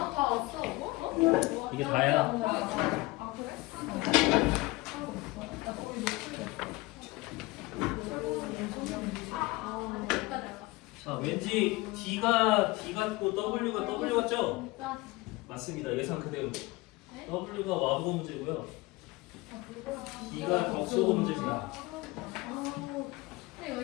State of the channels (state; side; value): quieter; right; 21.4 dB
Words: 이게 다야. 자, 왠지 D가 D 같고 W가 W 같죠? 맞습니다. 예상 그대로. W가 와보고 문제고요. D가 덕소고 문제입니다.